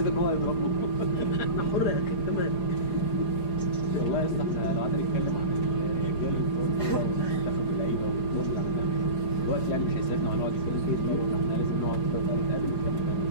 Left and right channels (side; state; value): right; late; 4.9 ms